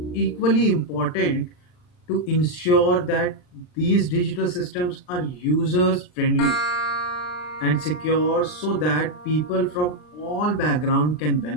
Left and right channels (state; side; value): late; right; 39 ms